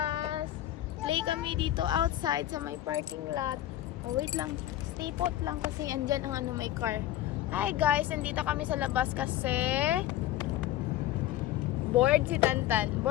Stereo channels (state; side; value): quieter; right; 13.5 dB